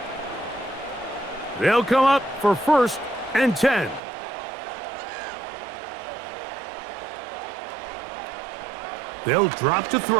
They'll come up for 1st and 10. They'll drop to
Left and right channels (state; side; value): drops out; left; at 4.0 s